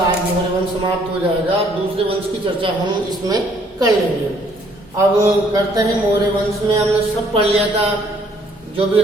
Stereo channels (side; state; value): both; normal; correlation 0.64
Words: मौर्य वंश समाप्त हो जाएगा, दूसरे वंश की चर्चा हम इसमें कर लेंगे। अब करते हैं मौर्य वंश में हमने सब पढ़ लिया था, जो भी